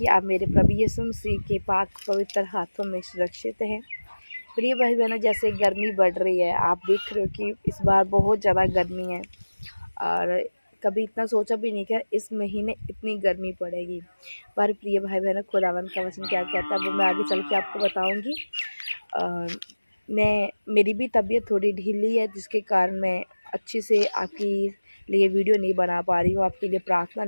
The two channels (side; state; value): both; inverted; correlation -1.00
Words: आप मेरे प्रभु यीशु मसीह के पाक पवित्र हाथों में सुरक्षित हैं। प्रिय भाई बहनों, जैसे गर्मी बढ़ रही है, आप देख रहे हो कि इस बार बहुत ज़्यादा गर्मी है और कभी इतना सोचा भी नहीं कि इस महीने इतनी गर्मी पड़ेगी। पर प्रिय भाई बहनों, खुदावन का वचन क्या कहता है वो मैं आगे चल के आपको बताऊँगी। मेरी भी तबीयत थोड़ी ढीली है, जिसके कारण मैं अच्छी से आपके लिए वीडियो नहीं बना पा रही हूँ, आपके लिए प्रार्थना